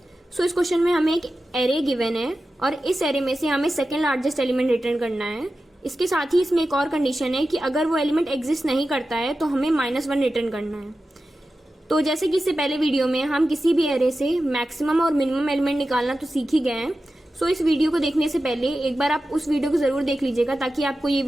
सो इस क्वेश्चन में हमें एक एरे गिवन है और इस एरे में से हमें सेकंड लार्जेस्ट एलिमेंट रिटर्न करना है। इसके साथ ही इसमें एक और कंडीशन है कि अगर वो एलिमेंट एग्जिस्ट नहीं करता है तो हमें -1 रिटर्न करना है। तो जैसे कि इससे पहले वीडियो में हम किसी भी एरे से मैक्सिमम और मिनिमम एलिमेंट निकालना तो सीख ही गए हैं। सो इस वीडियो को देखने से पहले एक बार आप उस वीडियो को जरूर देख लीजिएगा ताकि आपको ये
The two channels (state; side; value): normal; both; correlation 0.93